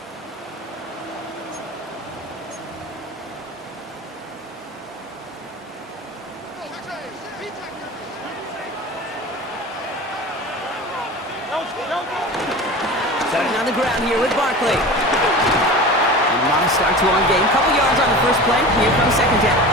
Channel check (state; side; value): normal; both; correlation 0.34